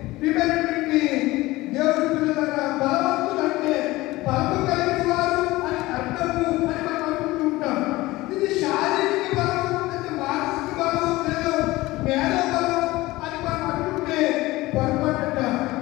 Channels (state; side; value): quieter; right; 19.2 dB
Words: ప్రియమైనటువంటి దేవుడి పిల్లల బలవంతులు అంటే బలము కలిగిన వారు అని అర్థము అని మనం అనుకుంటుంటాం. ఇది శారీరక బలం అంటే మానసిక బలం లేదా మేధో బలం అని మనం అనుకుంటే పొరపాటు.